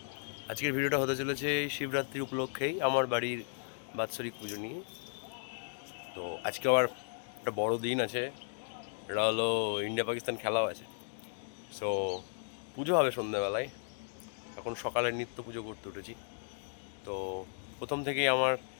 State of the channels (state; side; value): silent; right; digital silence